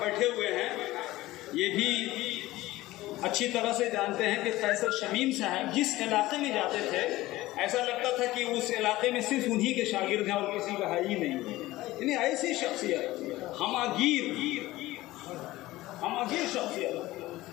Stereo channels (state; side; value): quieter; right; 17.5 dB